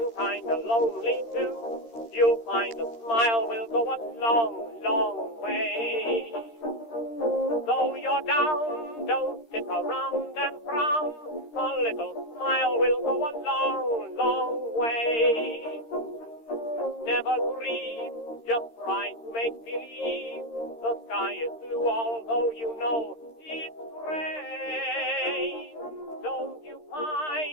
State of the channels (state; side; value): late; right; 13 ms